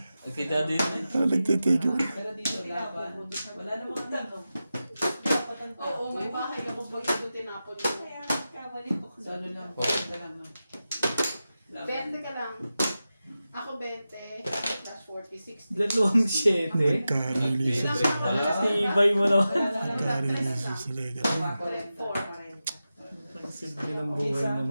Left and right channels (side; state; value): both; inverted; correlation -0.93